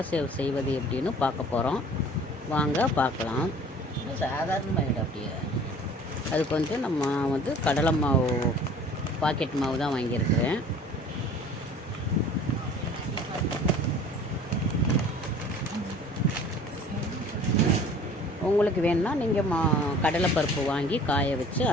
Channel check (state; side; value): normal; both; correlation 0.48